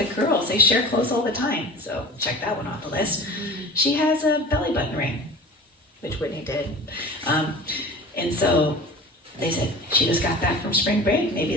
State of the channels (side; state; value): both; normal; correlation 0.37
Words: girls. They share clothes all the time." So check that one off the list. She has a belly button ring, which Whitney did. And so they said, "She just got back from spring break. Maybe